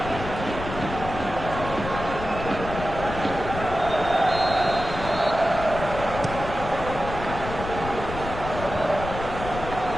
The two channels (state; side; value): noise; left; rumble, 8 dB below the sound